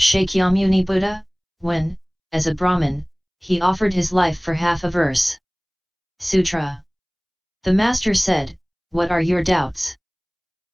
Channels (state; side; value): identical; both; correlation 1.00